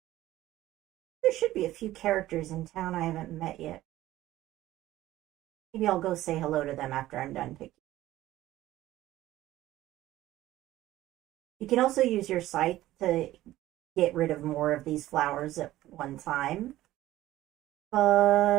There should be a few characters in town I haven't met yet. Maybe I'll go say hello to them after I'm done picking. You can also use your scythe to get rid of more of these flowers at one time.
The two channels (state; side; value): quieter; left; 15.2 dB